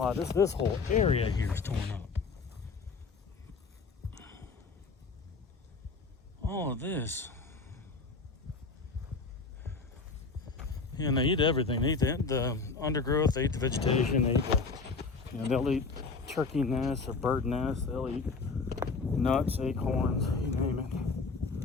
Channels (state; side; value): quieter; right; 4.4 dB